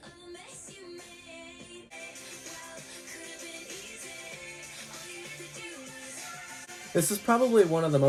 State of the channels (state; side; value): identical; both; correlation 1.00